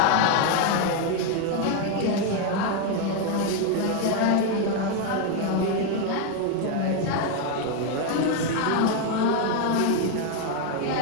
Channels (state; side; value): different; both; correlation 0.01